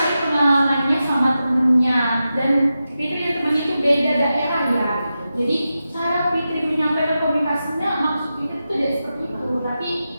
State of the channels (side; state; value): both; inverted; correlation -0.91